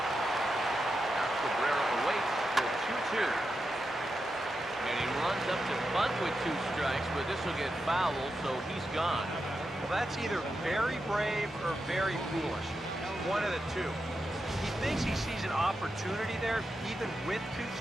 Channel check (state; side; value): normal; both; correlation 0.88